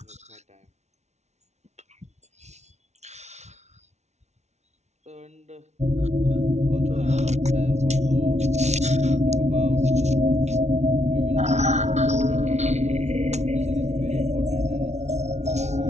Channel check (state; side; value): late; left; 0.32 ms